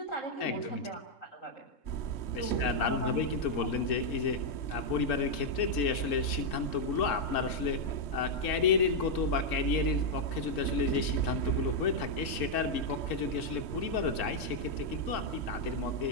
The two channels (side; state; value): right; late; 3.7 ms